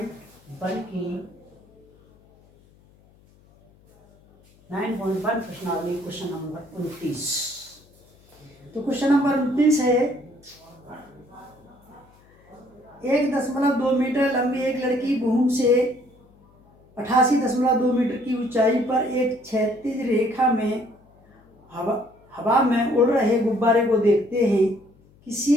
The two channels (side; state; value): left; noise; hum, 30 dB below the sound